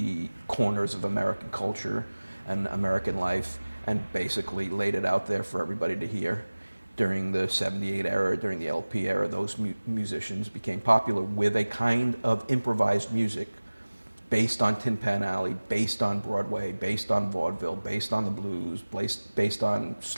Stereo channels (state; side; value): inverted; both; correlation -1.00